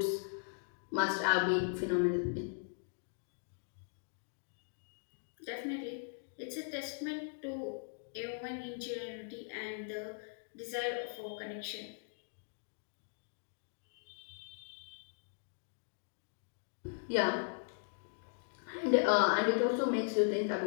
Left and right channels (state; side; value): silent; right; digital silence